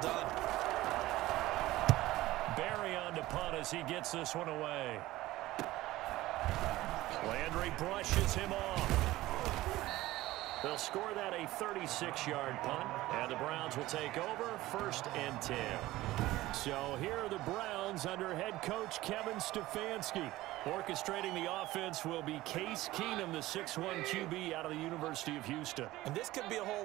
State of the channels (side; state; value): left; quieter; 17.1 dB